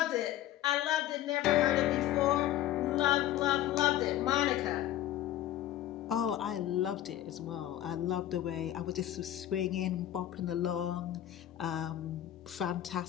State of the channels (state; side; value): quieter; right; 12.8 dB